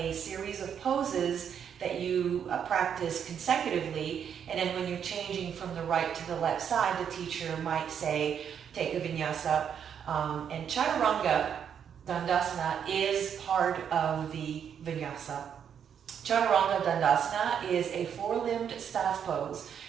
series of poses that you practice consecutively, and then when you're changing from the right to the left side, the teacher might say, take a Vinyasa, and Chaturanga Dandasana is part of the Vinyasa. Chaturanga Dandasana is a 4-limbed staff pose.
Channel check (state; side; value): quieter; left; 8.1 dB